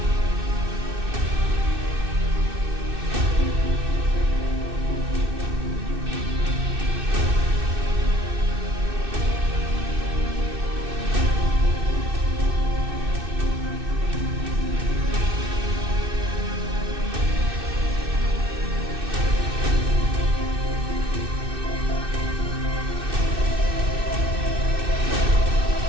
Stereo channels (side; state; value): left; late; 2.6 ms